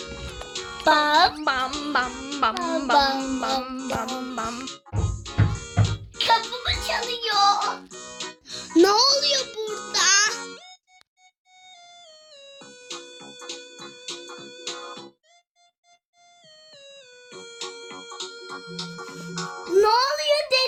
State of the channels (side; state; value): both; identical; correlation 1.00